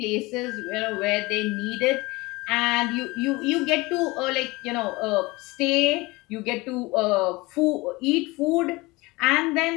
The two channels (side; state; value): right; quieter; 22.6 dB